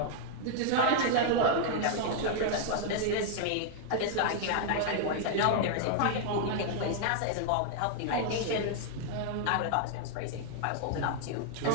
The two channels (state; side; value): different; both; correlation -0.01